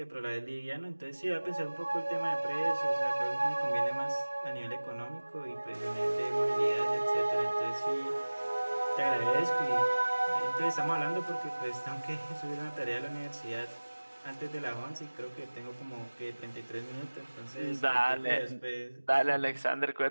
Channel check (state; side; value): inverted; both; correlation -1.00